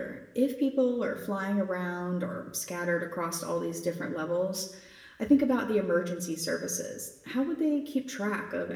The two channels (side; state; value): both; identical; correlation 1.00